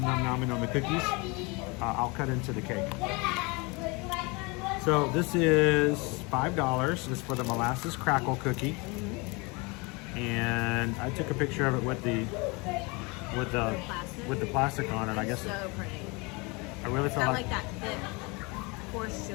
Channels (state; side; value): quieter; right; 27.9 dB